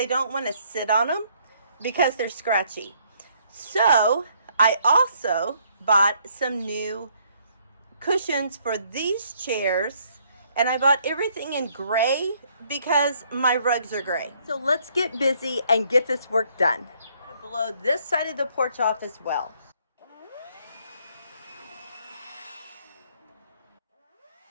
don't want to sit on them because they're scratchy. So I also bought some new cushions for these chairs, and I bought everything in gray because my rugs are gray. So let's get busy and get this work done. I'm going to blow this side of the porch off as well.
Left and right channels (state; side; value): inverted; both; correlation -0.67